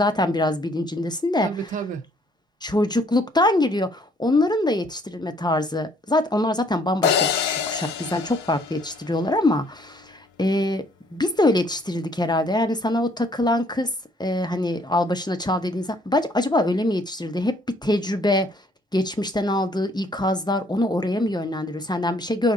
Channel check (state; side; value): normal; both; correlation 0.63